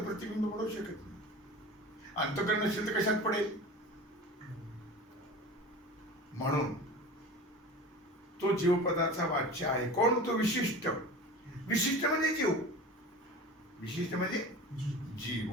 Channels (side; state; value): both; normal; correlation 0.35